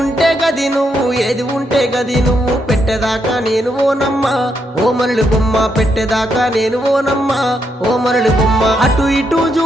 గది నువ్వు ఏది ఉంటే గది నువ్వు పెట్టేదాకా నేను ఓనమ్మా ఓ మరళి బొమ్మ పెట్టేదాకా నేను ఓనమ్మా ఓ మరళి బొమ్మ. అటు ఇటు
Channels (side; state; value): both; normal; correlation 0.79